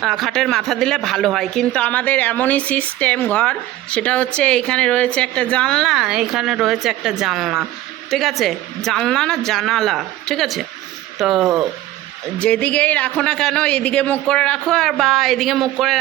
খাটের মাথা দিলে ভালো হয়, কিন্তু আমাদের এমনই সিস্টেম ঘর, সেটা হচ্ছে এইখানে রয়েছে একটা জানলা, এইখানে রয়েছে একটা জানলা, ঠিক আছে, জানলা না জানালা, ঠিক আছে। তো যেদিকেই রাখো না কেন, এদিকে মুখ করে রাখো আর বা এদিকে মুখ করে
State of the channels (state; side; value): quieter; left; 15.0 dB